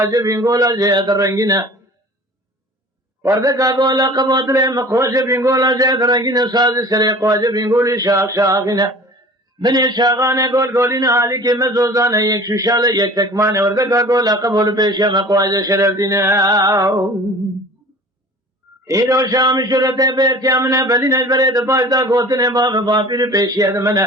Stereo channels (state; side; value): normal; both; correlation 0.43